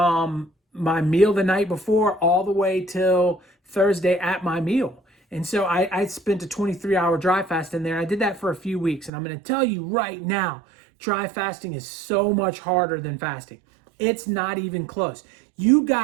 my meal the night before all the way till Thursday at my meal. And so I spent a 23-hour dry fast in there. I did that for a few weeks. And I'm going to tell you right now, dry fasting is so much harder than fasting. It's not even close. You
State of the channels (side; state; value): left; drops out; at 9.1 s